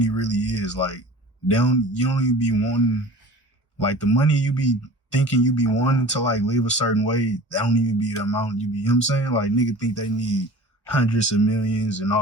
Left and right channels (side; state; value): both; normal; correlation 0.41